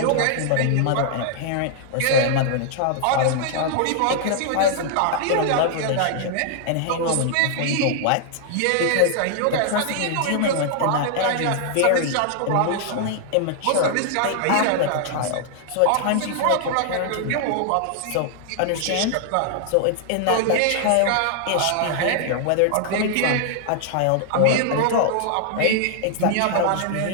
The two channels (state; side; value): different; both; correlation 0.00